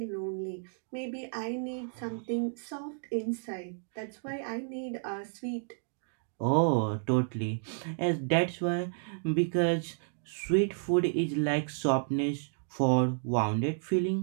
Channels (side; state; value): left; silent; digital silence